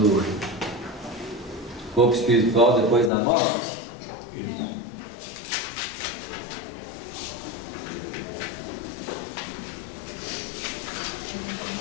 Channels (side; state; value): right; drops out; at 3.1 s